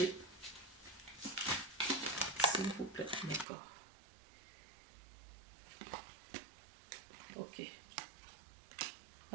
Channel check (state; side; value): drops out; left; at 3.5 s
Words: S'il vous plaît, d'accord. Ok.